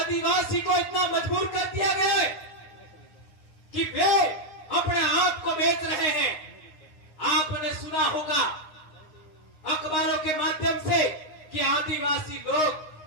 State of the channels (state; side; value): late; right; 9.6 ms